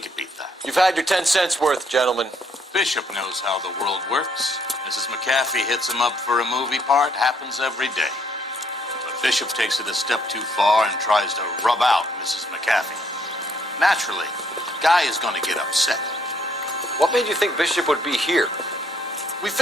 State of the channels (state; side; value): normal; both; correlation 0.69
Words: beat that. You've had your 10 cents worth, gentlemen. Bishop knows how the world works. Mrs. McAfee hits him up for a movie part, happens every day. But Bishop takes it a step too far and tries to rub out Mrs. McAfee. Naturally, Guy is going to get upset. What made you think Bishop would be here? We